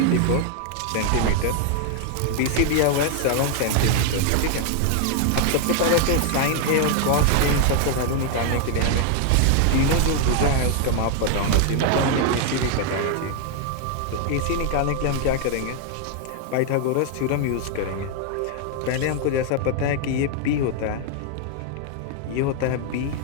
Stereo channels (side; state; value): both; different; correlation 0.00